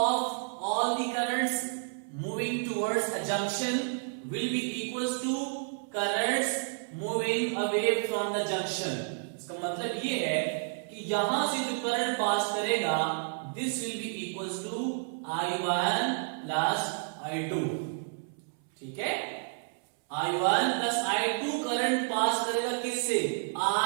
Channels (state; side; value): silent; left; 57 dB below the other